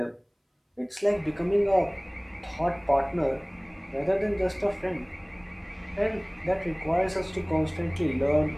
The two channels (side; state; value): both; identical; correlation 1.00